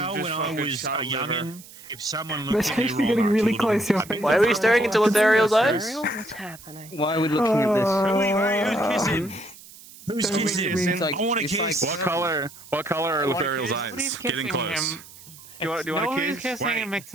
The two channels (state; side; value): noise; right; hiss, 19 dB below the sound